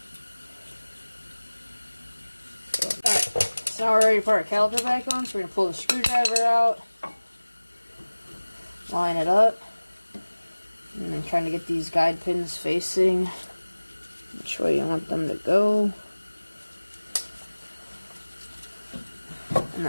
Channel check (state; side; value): inverted; both; correlation -1.00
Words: Alright, so now we're ready to put our caliper back on, so we're going to pull the screwdriver out, line it up, and then trying to get these guide pins facing which way you want them to go. And